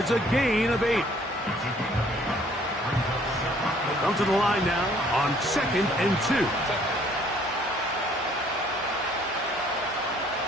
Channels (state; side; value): normal; both; correlation 0.60